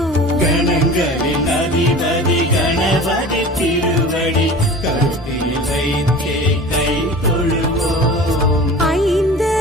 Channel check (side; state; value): both; normal; correlation 0.38